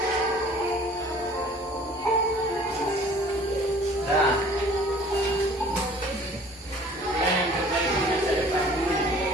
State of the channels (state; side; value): normal; both; correlation 0.51